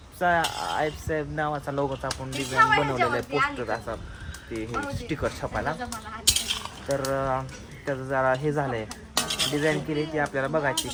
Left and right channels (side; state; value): both; identical; correlation 1.00